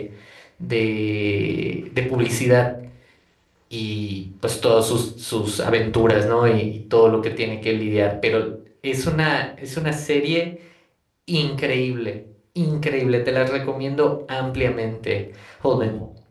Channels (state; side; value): identical; both; correlation 1.00